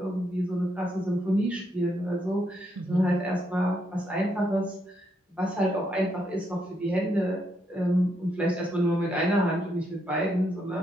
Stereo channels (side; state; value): both; normal; correlation 0.77